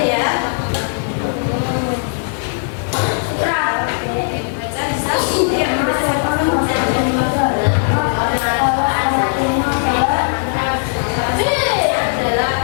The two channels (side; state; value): right; silent; digital silence